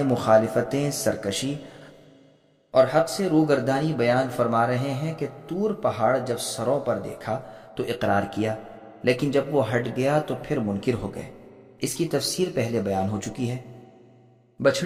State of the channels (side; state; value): both; identical; correlation 1.00